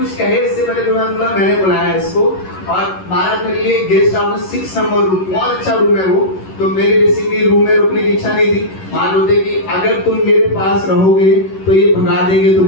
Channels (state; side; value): late; right; 11 ms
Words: कहे इससे पहले तो मैंने बोला मैंने बुलाया इसको। और महाराज मेरे लिए गेस्ट हाउस 6 नंबर रूम, बहुत अच्छा रूम है वो। तो मेरे बेसिकली रूम में रुकने की इच्छा नहीं थी। महाराज बोलते कि अगर तुम मेरे पास रहोगे तो ये भगा देंगे